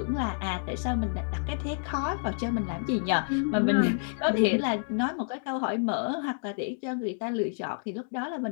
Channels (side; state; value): right; silent; digital silence